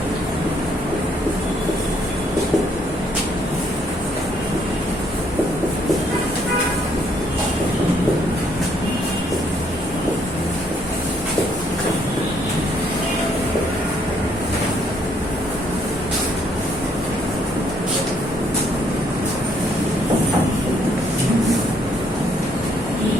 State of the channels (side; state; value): both; normal; correlation 0.68